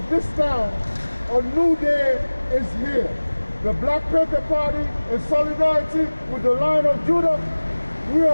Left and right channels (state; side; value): inverted; both; correlation -1.00